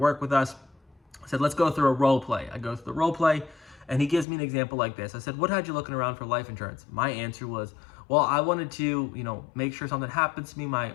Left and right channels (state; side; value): drops out; right; at 4.2 s